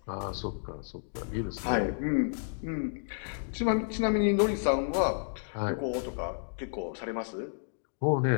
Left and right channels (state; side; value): silent; right; digital silence